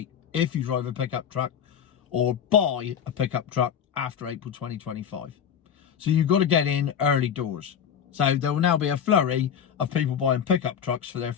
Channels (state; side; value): quieter; right; 8.2 dB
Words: if you drive a pickup truck or buy a pickup truck after April 2025. So you've got to get in early doors. So there will now be a flurry of people buying pickup trucks for their